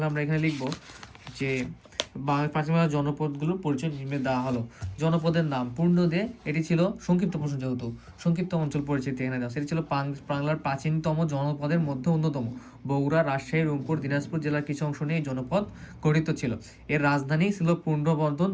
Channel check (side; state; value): both; identical; correlation 1.00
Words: আমরা এখানে লিখব যে প্রাচীন বাংলার জনপদগুলোর পরিচয় নিম্নে দেওয়া হলো। জনপদের নাম পূর্ণ দিয়ে, এটি ছিল সংক্ষিপ্ত প্রশ্ন, যেহেতু সংক্ষিপ্ত অঞ্চল পরিচিতি এখানে দেওয়া, সেটি ছিল বাংলার প্রাচীনতম জনপদের মধ্যে অন্যতম। বগুড়া, রাজশাহী, রংপুর, দিনাজপুর জেলার কিছু অংশ নিয়ে এই জনপদ গঠিত ছিল। এর রাজধানী ছিল পূর্ণবর্ধন